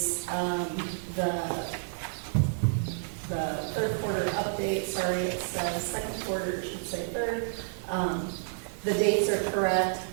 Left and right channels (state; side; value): silent; left; digital silence